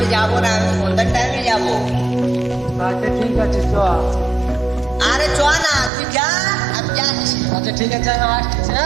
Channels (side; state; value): left; drops out; at 5.9 s